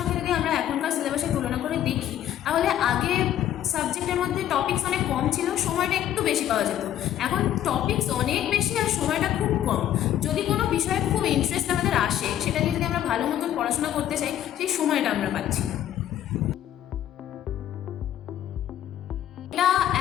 যদি আমরা এখনকার সিলেবাসের তুলনা করে দেখি, তাহলে আগে সাবজেক্টের মধ্যে টপিকস অনেক কম ছিল, সময়টা একটু বেশি পাওয়া যেত। এখন টপিকস অনেক বেশি আর সময়টা খুব কম। যদি কোনো বিষয়ে খুব ইন্টারেস্ট আমাদের আসে, সেটা নিয়ে যদি আমরা ভালো মতন পড়াশোনা করতে চাই, সেই সময়টা আমরা পাচ্ছি না। এটা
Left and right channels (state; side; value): quieter; right; 11.5 dB